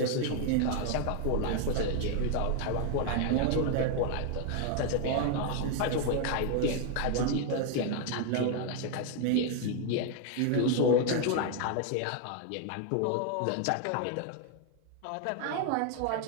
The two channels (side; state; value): both; different; correlation 0.01